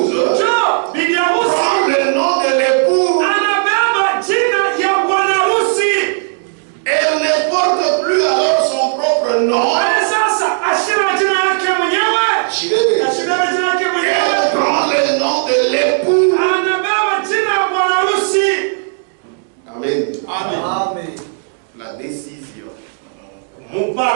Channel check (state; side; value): silent; left; digital silence